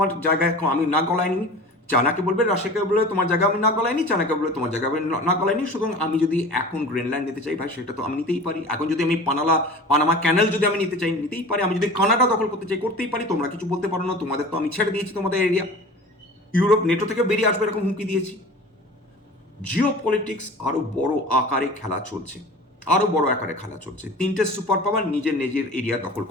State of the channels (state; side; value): normal; both; correlation 0.38